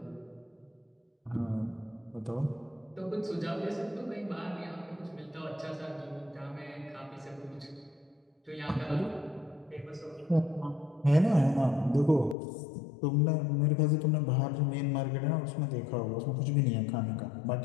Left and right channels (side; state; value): right; drops out; at 12.4 s